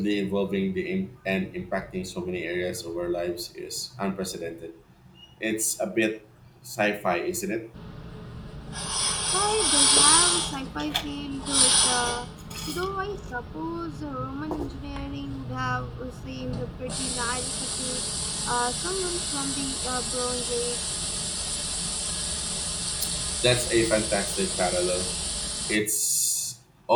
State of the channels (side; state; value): both; identical; correlation 1.00